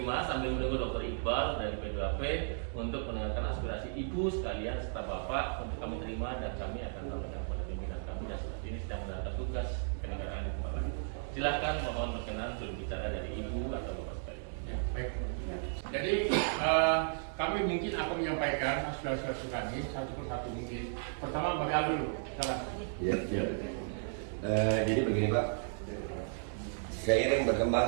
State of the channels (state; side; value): silent; left; digital silence